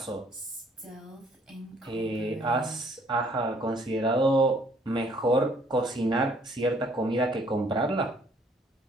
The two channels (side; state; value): both; normal; correlation 0.62